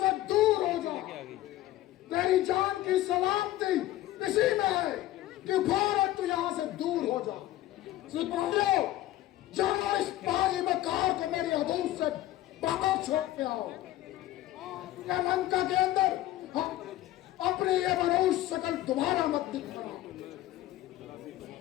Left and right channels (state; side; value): quieter; right; 14.8 dB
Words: दूर हो जा। तेरी जान की सलामती इसी में है कि फौरन तू यहाँ से दूर हो जा। सिपाहियों, जाओ इस बागी मकार को मेरी हदूद से बाहर छोड़ के आओ। या लंका के अंदर अपनी ये मनहूस शक्ल दोबारा मत दिखाना।